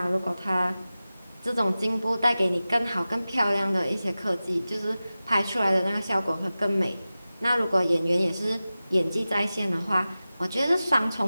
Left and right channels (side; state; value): both; inverted; correlation -0.96